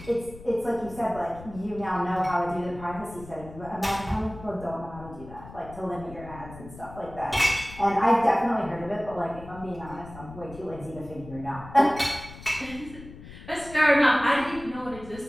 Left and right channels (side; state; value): left; noise; rumble, 16 dB below the sound